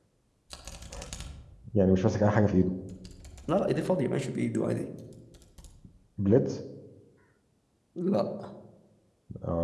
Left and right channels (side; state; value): both; identical; correlation 1.00